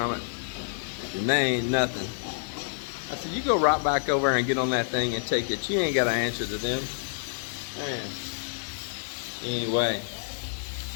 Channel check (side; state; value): right; silent; digital silence